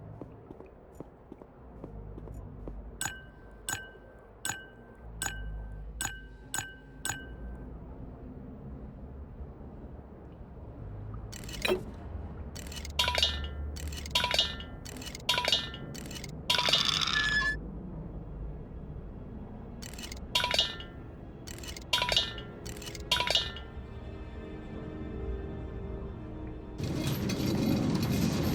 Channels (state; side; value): identical; both; correlation 1.00